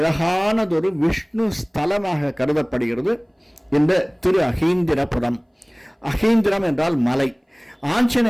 விஷ்ணு ஸ்தலமாக கருதப்படுகிறது இந்த திரு அகீந்திரபுரம். அகீந்திரம் என்றால் மலை.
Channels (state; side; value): identical; both; correlation 1.00